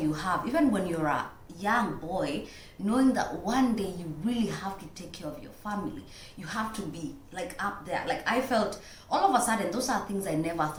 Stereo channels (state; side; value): identical; both; correlation 1.00